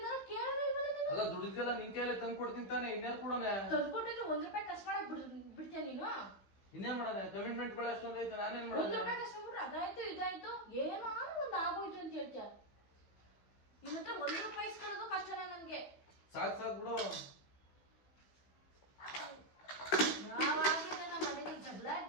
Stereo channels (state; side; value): late; right; 15 ms